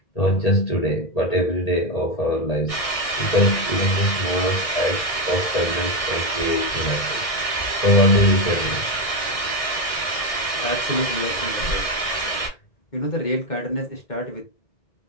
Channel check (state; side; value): late; right; 1.6 ms